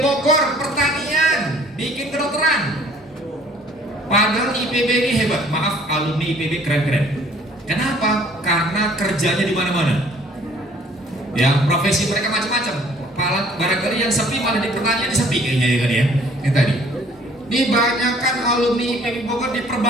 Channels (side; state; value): both; normal; correlation 0.56